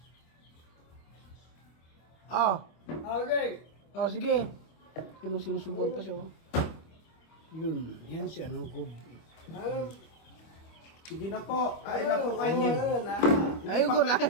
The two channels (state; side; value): late; right; 25 ms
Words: Oh. Okay. Oh, sige. Sinusubuan pa siya. Oh. Yun. Yan si ano ko. Sige na po. Ay na po kayo.